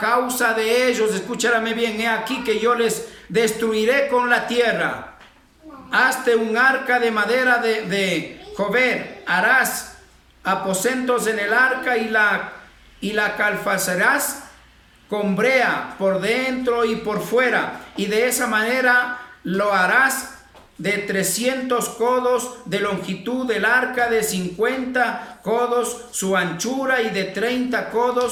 de ellos. Escúchame bien, he aquí que yo les destruiré con la tierra. Hazte un arca de madera de jover, harás aposentos en el arca y la calfazarás con brea por dentro y por fuera, y de esa manera lo harás de 300 codos de longitud del arca, de 50 codos su anchura y de 30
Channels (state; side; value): identical; both; correlation 1.00